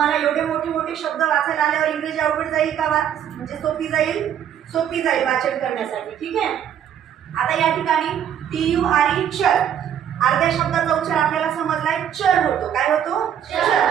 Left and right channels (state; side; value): quieter; left; 9.5 dB